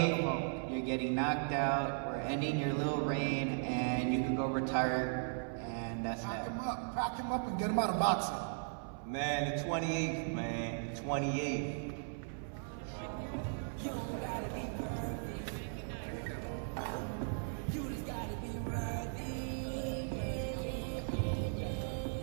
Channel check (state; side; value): silent; left; 53 dB below the other